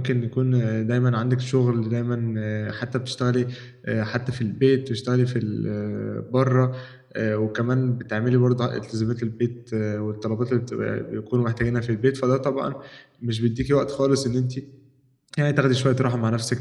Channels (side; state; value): both; identical; correlation 1.00